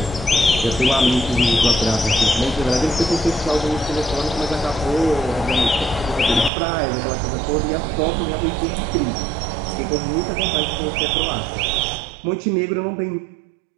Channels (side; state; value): left; drops out; at 6.5 s